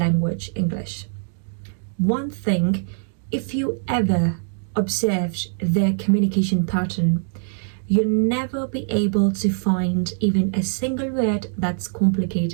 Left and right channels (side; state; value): left; silent; 64 dB below the other